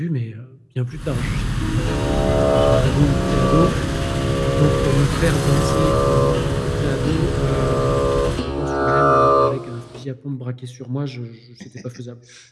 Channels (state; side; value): identical; both; correlation 1.00